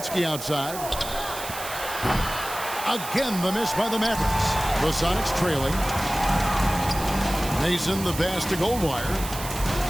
outside. Again, the miss by the Mavericks. The Sonics trailing. Mason the pass to Goldwire.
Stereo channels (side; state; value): right; noise; hiss, 10 dB below the sound